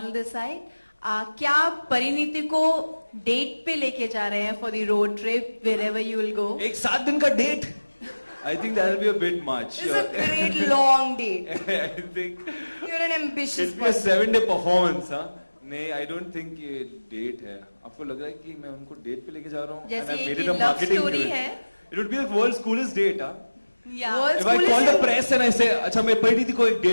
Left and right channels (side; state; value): both; inverted; correlation -1.00